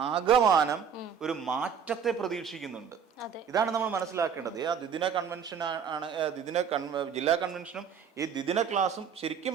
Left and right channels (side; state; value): left; quieter; 7.2 dB